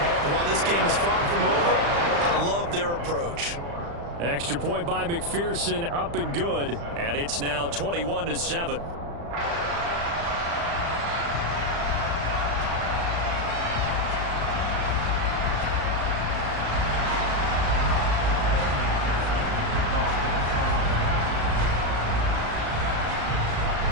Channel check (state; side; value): late; left; 35 ms